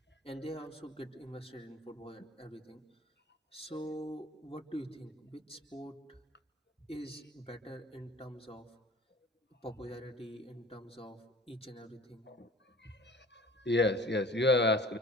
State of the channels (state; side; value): normal; both; correlation 0.46